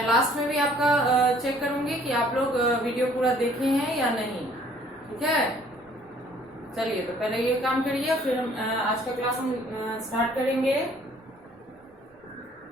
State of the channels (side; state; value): both; normal; correlation 0.58